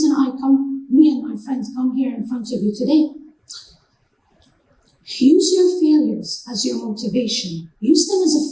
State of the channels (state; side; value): identical; both; correlation 1.00